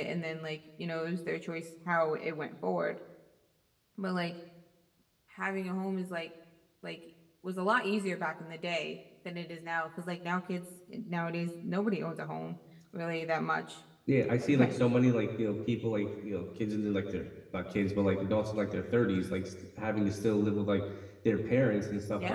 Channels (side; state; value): both; identical; correlation 1.00